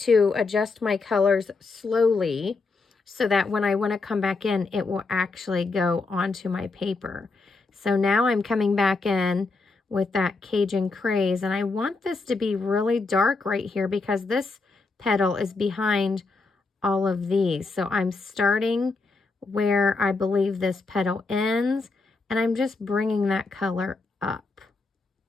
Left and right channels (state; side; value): quieter; right; 3.9 dB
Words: adjust my colors slowly so that when I want to come back in, it will actually go onto my paper. So now I'm coming back in with that Cajun Craze, and I want this to be really dark right here because this petal is behind all of these. So I'm starting where I believe this petal ends, and I'm just bringing that color up.